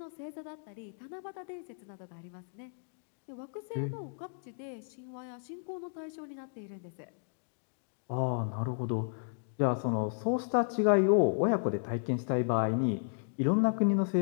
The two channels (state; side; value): silent; right; digital silence